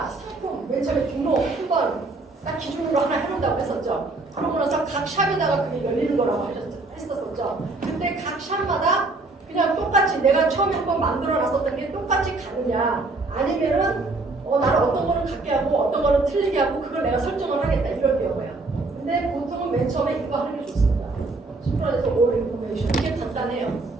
상품 맨 처음에 등록 한번 딱 기준으로 하나 해놓는다고 했었죠. 그러고 나서 각 샵에다가 그게 열리는 거라고 했었죠. 근데 각 샵마다 그냥 똑같이 내가 처음에 한번 만들어 놨었던 게 똑같이 가느냐 아니면은 나는 어떤 거는 같게 하고 어떤 거는 틀리게 하고 그걸 내가 설정을 하겠다 이럴 경우야. 근데 보통은 맨 처음에 이거 하는 게 좋습니다. 심플에서 all information 이게 간단해요.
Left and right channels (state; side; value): quieter; left; 3.4 dB